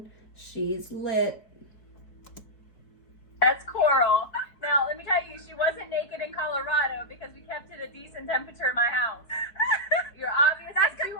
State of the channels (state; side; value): late; right; 4.6 ms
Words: she's lit. That's Coral. Now, let me tell you, she wasn't naked in Colorado because we kept it a decent temperature in my house. You're obviously That's too because